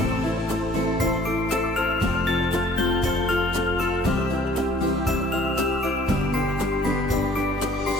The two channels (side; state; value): both; normal; correlation 0.56